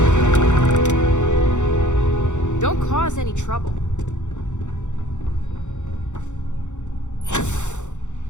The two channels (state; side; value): late; right; 0.84 ms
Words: Don't cause any trouble.